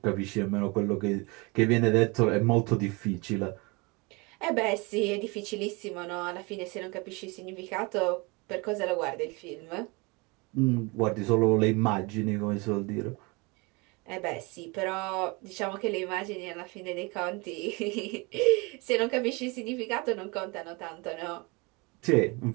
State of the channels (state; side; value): quieter; left; 27.4 dB